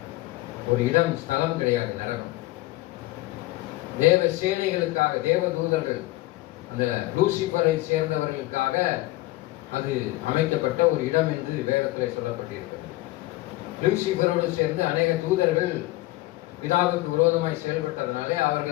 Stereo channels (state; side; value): quieter; right; 18.6 dB